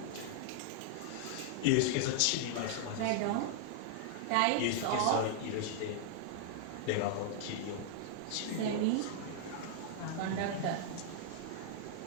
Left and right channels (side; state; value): both; different; correlation -0.01